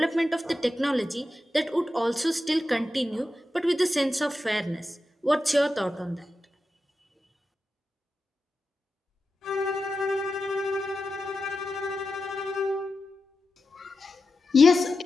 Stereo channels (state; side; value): normal; both; correlation 0.91